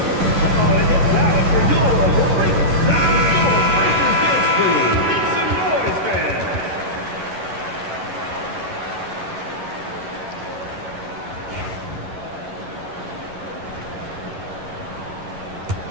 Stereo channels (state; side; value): late; left; 11 ms